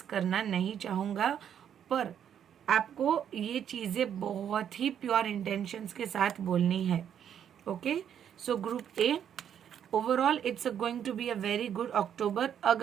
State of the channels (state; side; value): quieter; left; 9.1 dB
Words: करना नहीं चाहूँगा। पर आपको ये चीज़ें बहुत ही प्योर इंटेंशंस के साथ बोलनी है। Okay, so group A, overall it's going to be a very good October.